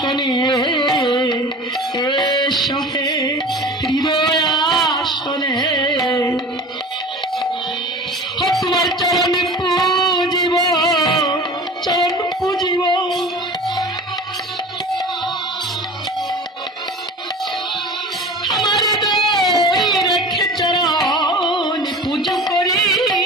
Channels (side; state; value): both; normal; correlation 0.37